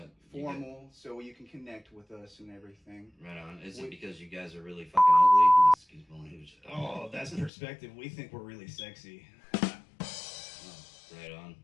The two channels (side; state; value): right; drops out; at 7.5 s